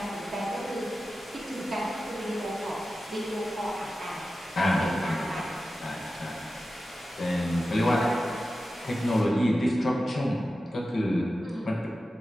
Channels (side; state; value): both; normal; correlation 0.93